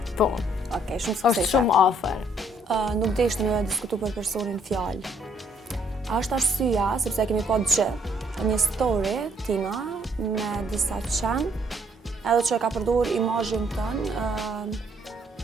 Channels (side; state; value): both; normal; correlation 0.67